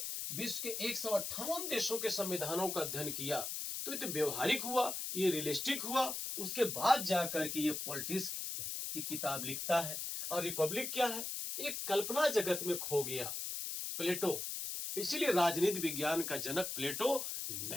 विश्व के 158 देशों के संविधानों का अध्ययन किया। तो ये तो व्यवहारिक हुआ, ये रियलिस्टिक हुआ। उसके बाद जाकर के ये पॉलिटिक्स की किताब लिखता है। और रिपब्लिक क्या है? एक कल्पना जगत में खो गया प्लेटो, इसीलिए राजनीति विज्ञान का जनक प्लेटो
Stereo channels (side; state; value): left; noise; hiss, 4 dB below the sound